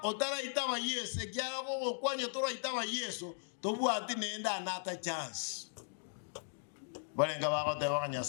otara itaba Yesu ekyala ko kwanya tora itaba Yesu tobwati nenda anata chance balenga bako te bakanya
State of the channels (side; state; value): right; silent; digital silence